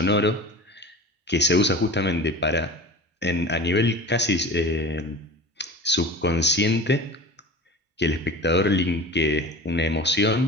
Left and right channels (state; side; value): normal; both; correlation 0.36